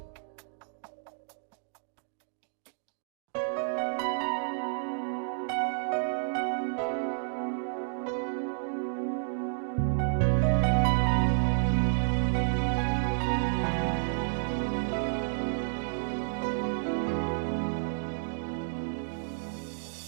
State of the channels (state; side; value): silent; left; digital silence